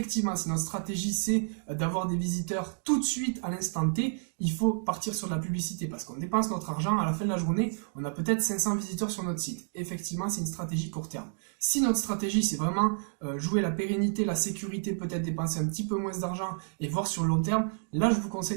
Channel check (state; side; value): silent; left; digital silence